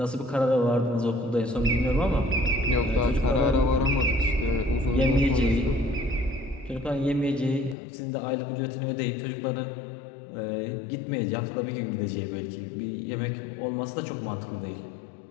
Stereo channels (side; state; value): right; drops out; at 7.8 s